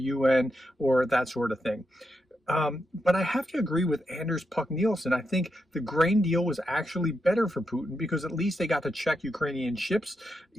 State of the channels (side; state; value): both; normal; correlation 0.85